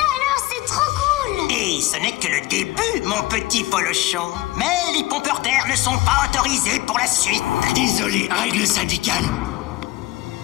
alors, c'est trop cool. Et ce n'est que le début, mon petit polochon. Mais les pompeurs d'air ne sont pas autorisés pour la suite. Désolé, règle syndicale.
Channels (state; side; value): quieter; right; 18.6 dB